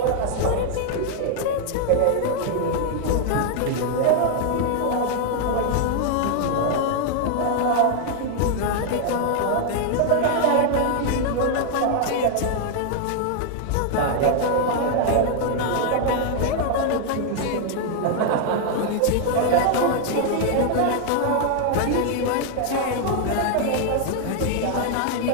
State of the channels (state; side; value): different; both; correlation 0.00